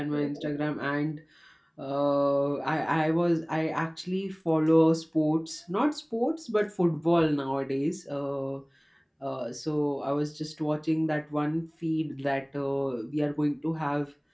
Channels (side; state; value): both; identical; correlation 1.00